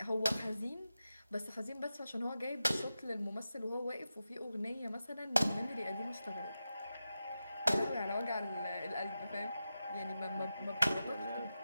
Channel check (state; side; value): inverted; both; correlation -0.91